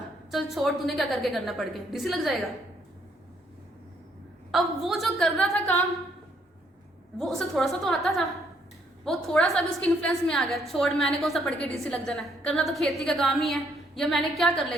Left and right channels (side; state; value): both; normal; correlation 0.69